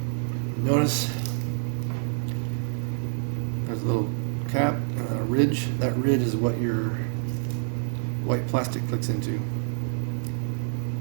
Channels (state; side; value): silent; left; digital silence